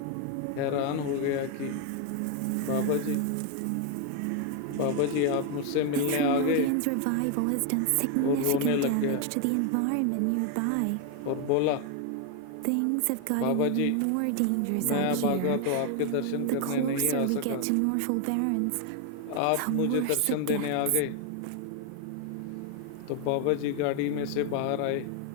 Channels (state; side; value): different; both; correlation 0.01